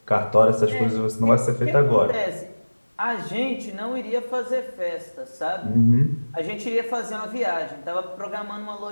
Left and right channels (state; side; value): inverted; both; correlation -1.00